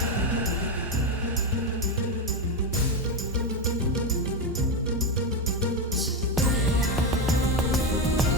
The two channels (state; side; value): normal; both; correlation 0.10